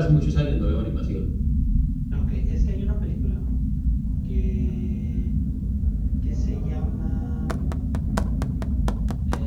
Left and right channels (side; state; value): both; identical; correlation 1.00